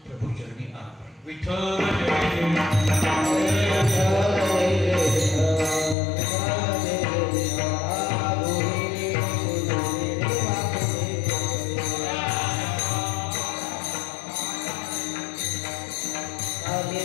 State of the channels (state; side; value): drops out; right; at 6.0 s